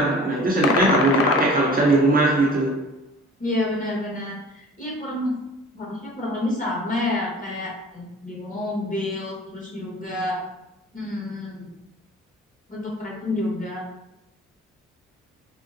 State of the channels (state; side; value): normal; both; correlation 0.44